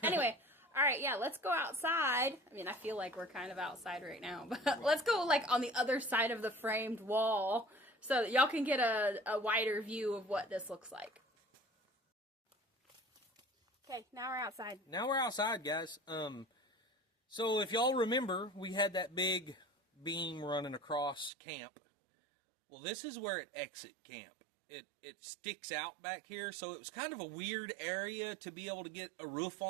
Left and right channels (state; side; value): drops out; left; at 21.3 s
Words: Anyway. All right, yeah, let's go outside. I mean, I feel like we're kind of outside right now, but let's go, like, on the other side of the framed wall so that y'all can get a wider view of what this looks like. Okay, now we're outside. Now we're outside, guys. So if y'all remember, we had that big beam running across camp. Well, this is where it exit camp. It sticks out back here, so it was kind of a weird area to be able to get a roof